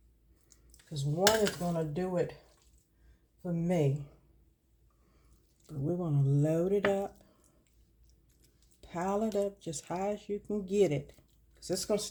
Because one is going to do it for me. But we're going to load it up. Pile it up just high as you can get it. Because it's going to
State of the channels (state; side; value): identical; both; correlation 1.00